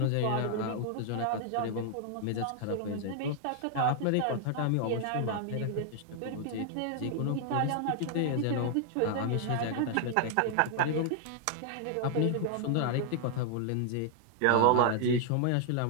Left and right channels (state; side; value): different; both; correlation 0.00